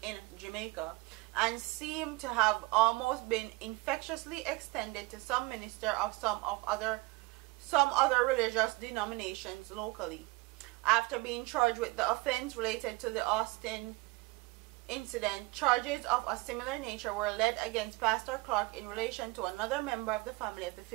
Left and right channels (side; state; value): left; quieter; 23.1 dB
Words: in Jamaica, and seemed to have almost been infectiously extended to some ministers of some other religious denominations locally. After being charged with the offense related to the Austin incident, charges of a similar nature were led against Pastor Clark in relation to another member of the family of the